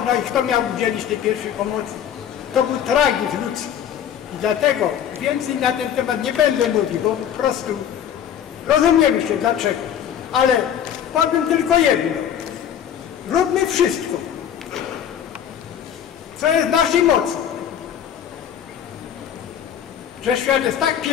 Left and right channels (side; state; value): right; quieter; 9.3 dB